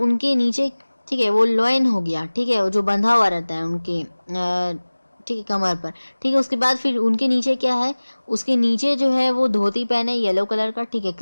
नीचे, ठीक है, वो लॉइन हो गया, ठीक है, वो जो बंधा हुआ रहता है उनके ठीक है कमर पर, ठीक है। उसके बाद फिर उनके नीचे क्या है, उसके नीचे जो है वो धोती पहने येलो कलर का, ठीक है,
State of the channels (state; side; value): inverted; both; correlation -1.00